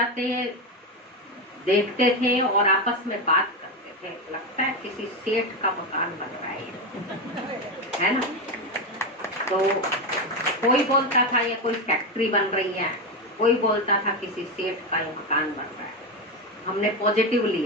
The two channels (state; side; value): normal; both; correlation 0.13